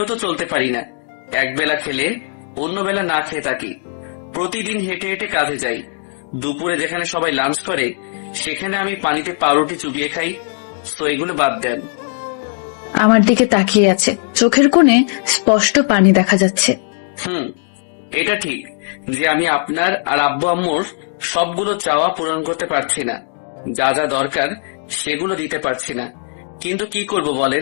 তো চলতে পারি না। এক বেলা খেলে অন্য বেলা না খেয়ে থাকি। প্রতিদিন হেঁটে হেঁটে কাজে যাই। দুপুরে যেখানে সবাই লাঞ্চ করে, সেখানে আমি পানিতে পাউরুটি চুবিয়ে খাই। তো এগুলো বাদ দেন। আমার দিকে তাকিয়ে আছে, চোখের কোণে স্পষ্ট পানি দেখা যাচ্ছে। এটা ঠিক যে আমি আপনার আর আব্বু আম্মুর সবগুলো চাওয়া পূরণ করতে পারছি না। যা যা দরকার সেগুলো দিতে পারছি না। কিন্তু কি করব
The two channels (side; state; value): right; silent; 65 dB below the other